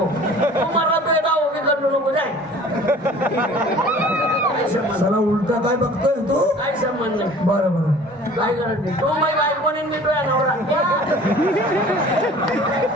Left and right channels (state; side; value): normal; both; correlation 0.47